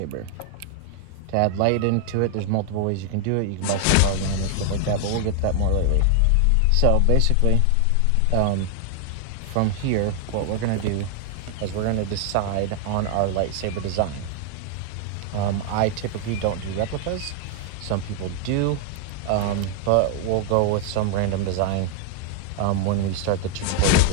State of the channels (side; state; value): both; different; correlation 0.00